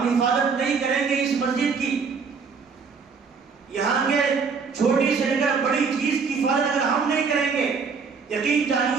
حفاظت نہیں کریں گے اس مسجد کی، یہاں کے چھوٹی سے لے کر بڑی چیز کی حفاظت اگر ہم نہیں کریں گے، یقین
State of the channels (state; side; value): quieter; left; 5.4 dB